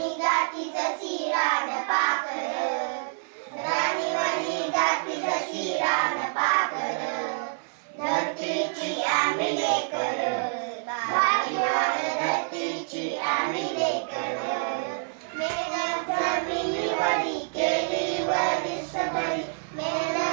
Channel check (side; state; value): left; silent; 60 dB below the other